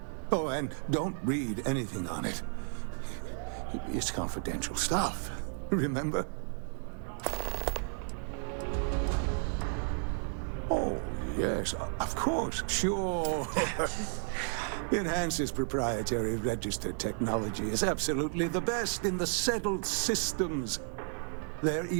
Oh, and don't read anything on it. It's confidential stuff, remember? Oh, yes, of course, sure. Enhance's proprietary registered technology is absolutely the best in the settled systems. There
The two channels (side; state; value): left; silent; 56 dB below the other